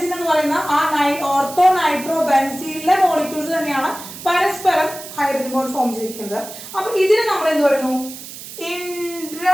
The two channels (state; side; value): noise; right; hiss, 13 dB below the sound